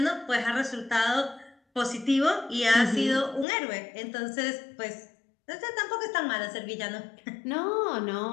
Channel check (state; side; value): drops out; right; at 3.5 s